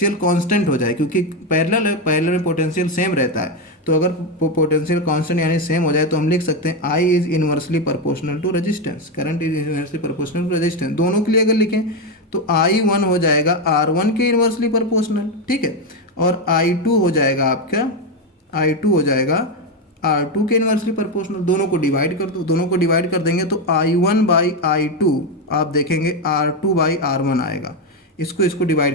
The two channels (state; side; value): normal; both; correlation 0.08